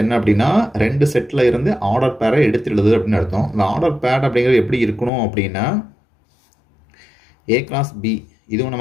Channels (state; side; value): drops out; right; at 5.1 s